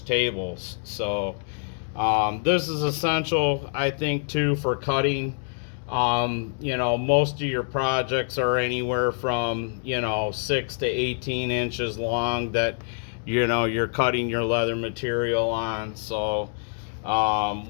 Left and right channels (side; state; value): right; silent; digital silence